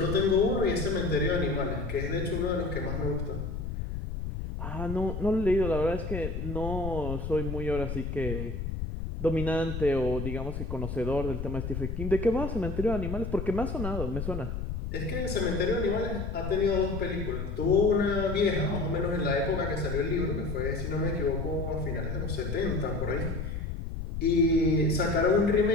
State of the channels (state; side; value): noise; left; rumble, 5 dB below the sound